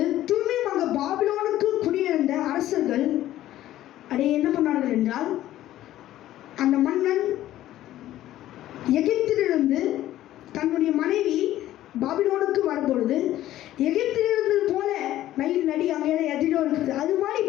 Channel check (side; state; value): right; quieter; 13.8 dB